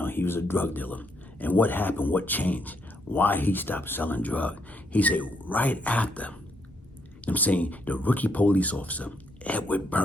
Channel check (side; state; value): both; normal; correlation 0.75